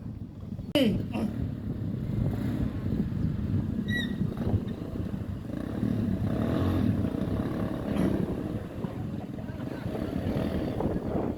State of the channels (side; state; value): both; identical; correlation 1.00